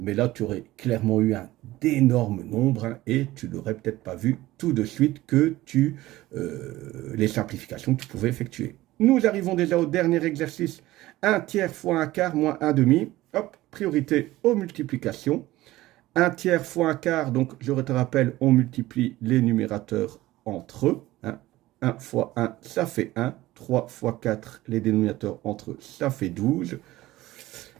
là, tu aurais clairement eu un d'énormes nombres et tu n'aurais peut-être pas vu tout de suite que les simplifications que tu pouvais effectuer. Nous arrivons déjà au dernier exercice. 1 tiers fois 1 quart moins 1 demi. Hop, priorité aux multiplications. 1 tiers fois 1 quart, donc je te rappelle, on multiplie les numérateurs entre eux. 1 fois 1, ça fait 1. 3 fois 4, les dénominateurs entre eux, ça fait 12.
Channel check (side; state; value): left; quieter; 17.0 dB